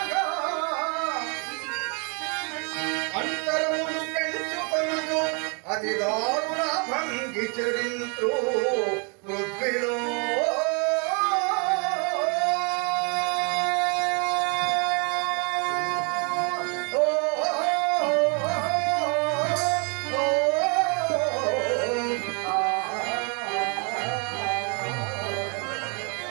అంతరములు పెంచుకొనుచు అతి దారుణ భంగి చరింతు పృథ్వీలో.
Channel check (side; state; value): left; quieter; 36.0 dB